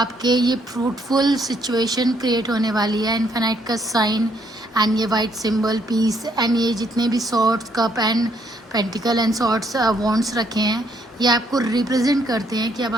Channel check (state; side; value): normal; both; correlation 0.70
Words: ये फ्रूटफुल सिचुएशन क्रिएट होने वाली है। इन्फिनाइट का साइन एंड ये वाइट सिंबल पीस, एंड ये जितने भी swords, cup and pentacle and swords wands रखे हैं, ये आपको रिप्रेजेंट करते हैं कि अब